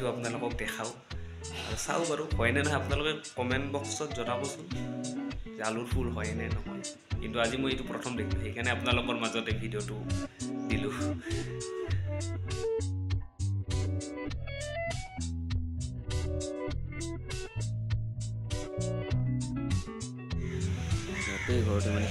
আপোনালোকক দেখাও আৰু চাও বাৰু হয় নে নহয় আপোনালোকে কমেন্ট বক্সত জনাবচোন যে আলুৰ ফুল হয় নে নহয় কিন্তু আজি মই এইটো প্ৰথম দেখিলো সেইকাৰণে আপোনালোকৰ মাজতে ভিডিঅ'টো দিলো এই ঘৰতে মানে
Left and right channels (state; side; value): identical; both; correlation 1.00